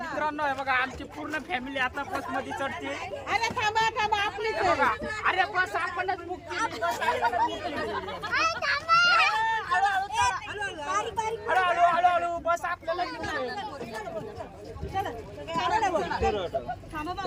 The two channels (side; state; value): both; identical; correlation 1.00